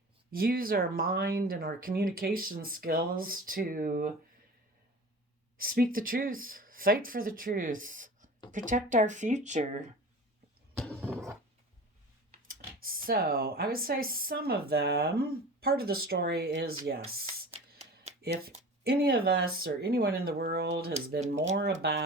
use our mind and our communication skills to speak the truth, fight for the truth, protect our future. So I would say some of them, part of the story is yes, if any of us or anyone in the world has been more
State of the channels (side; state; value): both; normal; correlation 0.37